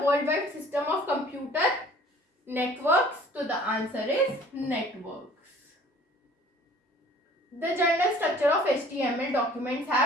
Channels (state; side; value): normal; both; correlation 0.51